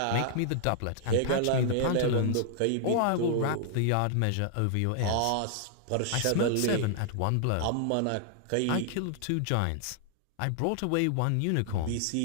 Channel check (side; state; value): both; different; correlation -0.01